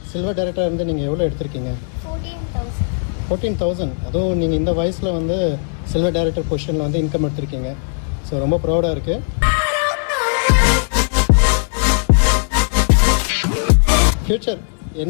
சில்வர் டைரக்டராக இருந்து நீங்கள் எவ்வளோ எடுத்திருக்கீங்க? 14,000. 14,000. அதுவும் நீங்கள் இந்த வயசில் வந்து சில்வர் டைரக்டர் பொசிஷனில் வந்து இன்கம் எடுத்திருக்கீங்க. ஸோ ரொம்ப ப்ரௌடாக இருக்குது. ஃப்யூச்சர்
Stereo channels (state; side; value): silent; right; 67 dB below the other